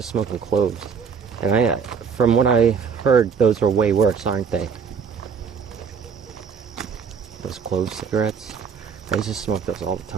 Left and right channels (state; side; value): quieter; left; 6.1 dB